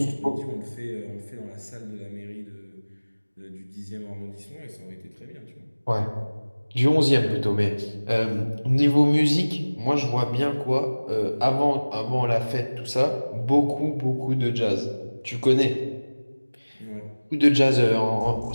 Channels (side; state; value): both; inverted; correlation -1.00